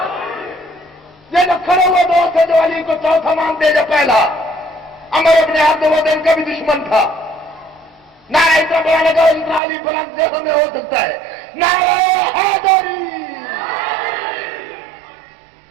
یہ جو کھڑے ہوئے دوست ہے جو علی کو چوتھا مانتے جو پہلا عمر ابن عبد الودین کا بھی دشمن تھا. نعرہ اتنا بڑا لگا اتنا علی بلند دیکھو میں ہو سکتا ہے. نعرہ حیدری.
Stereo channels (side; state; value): left; drops out; at 9.6 s